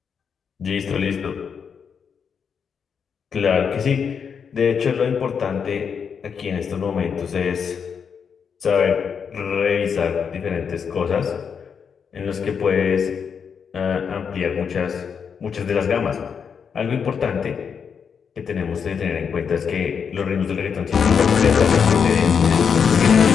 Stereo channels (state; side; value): quieter; right; 6.7 dB